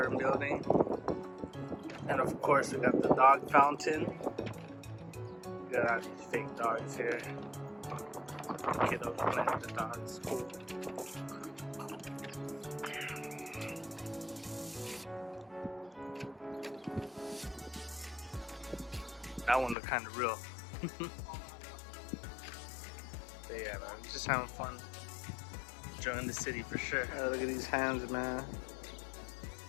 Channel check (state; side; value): drops out; right; at 19.8 s